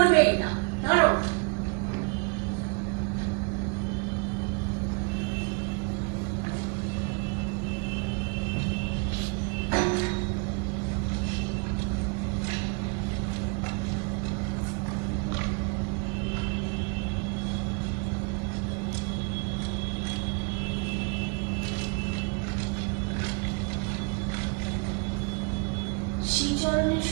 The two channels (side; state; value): left; quieter; 34.7 dB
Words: না। ধরো। শ্রীচরণের